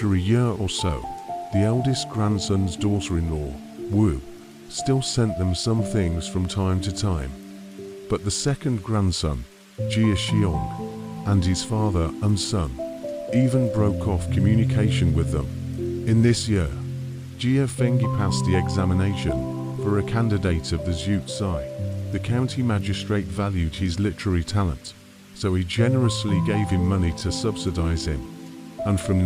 a year or so, the eldest grandson's daughter-in-law, Wu, still sent them some things from time to time. But the second grandson, Jia Xiong, and his father and son even broke off communication with them. In this year, Jia Fengyi passed the examination for a candidate of the Zhu Zai. The county magistrate valued his literary talent, so he generously gave him money to subsidize him. And from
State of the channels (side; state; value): both; identical; correlation 1.00